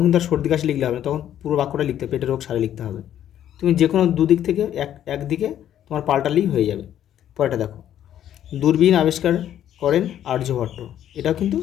কিন্তু আর সর্দি কাশি লিখলে হবে না, তখন পুরো বাক্যটা লিখতে হবে, পেটের রোগ সারে লিখতে হবে। তুমি যে কোনো দুদিক থেকে একদিকে তোমার পাল্টালেই হয়ে যাবে। পরেটা দেখো, দূরবীন আবিষ্কার করেন আর্যভট্ট। এটাও কিন্তু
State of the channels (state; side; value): quieter; right; 11.0 dB